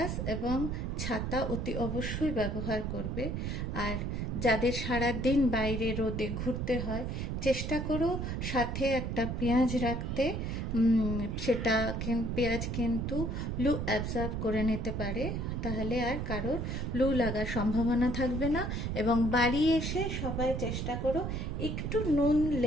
এবং ছাতা অতি অবশ্যই ব্যবহার করবে। আর যাদের সারা দিন বাইরে রোদে ঘুরতে হয়, চেষ্টা করো সাথে একটা পেঁয়াজ রাখতে। সেটা পেঁয়াজ কিন্তু লু অ্যাবজর্ব করে নিতে পারে, তাহলে আর কারোর লু লাগার সম্ভাবনা থাকবে না। এবং বাড়ি এসে সবাই চেষ্টা করো একটু নুন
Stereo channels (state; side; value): noise; right; rumble, 2 dB below the sound